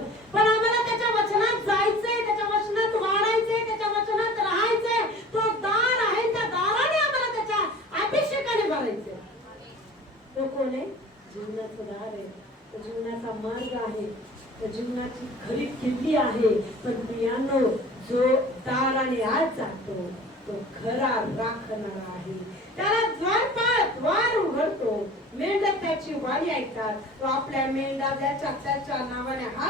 पण आम्हाला त्याच्या वचनात जायचंय, त्याच्या वचनात वाढायचंय, त्याच्या वचनात राहायचंय. तो दार आहे, त्या दाराने आम्हाला त्याच्या अभिषेकाने भरायचंय. तो कोण आहे, जीवनाचं दार आहे, तो जीवनाचा मार्ग आहे, तो जीवनाची खरी किल्ली आहे. पण प्रियांनो, जो दाराने आत जातो तो खरा राखणारा आहे. त्याला द्वार उघडतो, मेंढ्या त्याची वाणी ऐकतात. तो आपल्या मेंढ्या त्याच्या नावाने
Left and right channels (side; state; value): both; normal; correlation 0.43